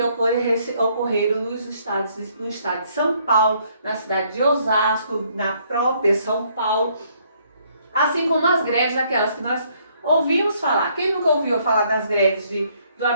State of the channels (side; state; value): both; inverted; correlation -0.67